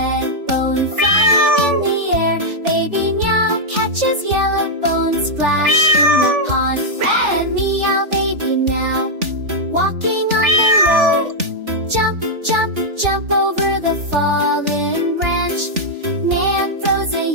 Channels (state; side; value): late; left; 3.4 ms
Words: bone flying in the air. Baby meow catches yellow bone, splash in the pond. Red meow, baby meow, walking on the road, jump, jump, jump over the fallen branch. Man throws a